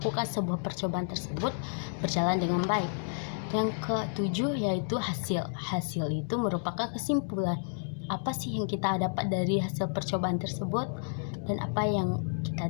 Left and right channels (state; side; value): silent; right; digital silence